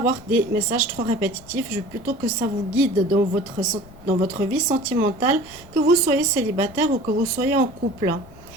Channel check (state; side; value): noise; left; rumble, 22 dB below the sound